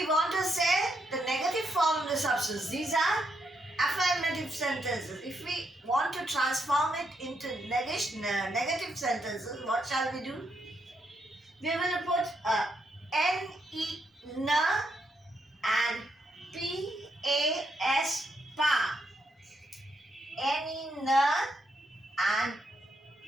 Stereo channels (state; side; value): normal; both; correlation 0.79